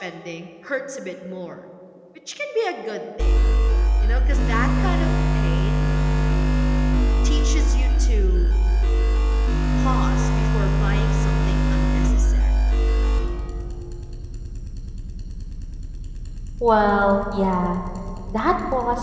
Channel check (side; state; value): both; identical; correlation 1.00